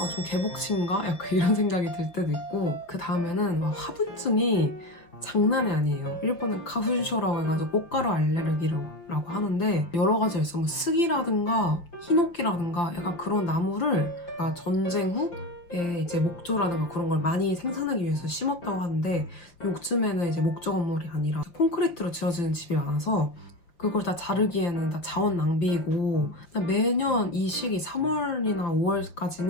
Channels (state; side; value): late; right; 5.8 ms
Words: 개복신가? 약간 이런 생각이 들 때도 있고. 그 다음에는 화분증이 장난이 아니에요. 일본은 가훈쇼라고 해가지고 꽃가루 알레르기라고 하는데 여러 가지가 있어. 뭐 스기라든가 히노키라든가 약간 그런 나무를 전쟁 후에 이제 목조라든가 그런 걸 많이 생산하기 위해서 심었다고 하는데 요즘에는 이제 목조 건물이 아니라 콘크리트로 지어지는 집이 많아서 그걸 다 자르기에는 다 자원 낭비이고 매년 이 시기 3월이나